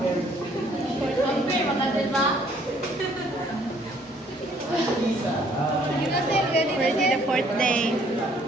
Ready the fourth day.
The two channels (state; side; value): normal; both; correlation 0.62